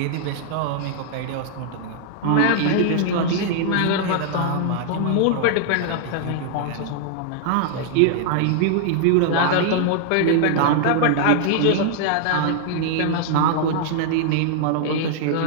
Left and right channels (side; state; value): both; different; correlation -0.01